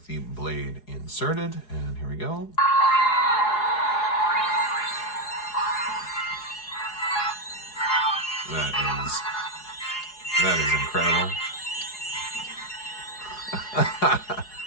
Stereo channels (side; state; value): right; late; 4.8 ms